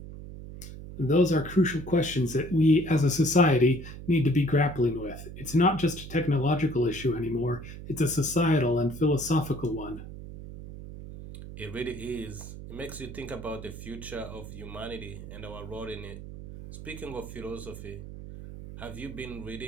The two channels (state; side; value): noise; right; hum, 12 dB below the sound